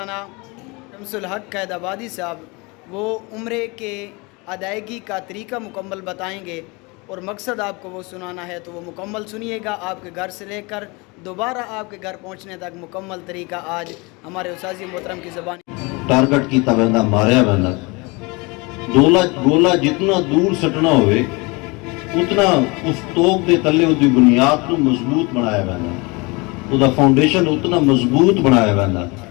شمس الحق قید آبادی صاحب وہ عمرے کے ادائیگی کا طریقہ مکمل بتائیں گے، اور مقصد آپ کو وہ سنانا ہے تو وہ مکمل سنیے گا۔ آپ کے گھر سے لے کر دوبارہ آپ کے گھر پہنچنے تک مکمل طریقہ آج ہمارے استاذ محترم کی زبان ٹارگٹ کیتا ویندا، ماریا ویندا۔ گولا جتنا دور سٹنا ہوئے اتنا اس توپ دے تلے اس دی بنیاد کو مضبوط بنایا ویندا، اس دا فاؤنڈیشن اتنا مضبوط بنایا ویندا۔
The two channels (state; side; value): quieter; right; 26.9 dB